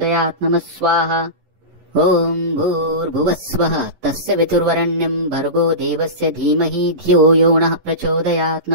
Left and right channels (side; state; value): left; late; 11 ms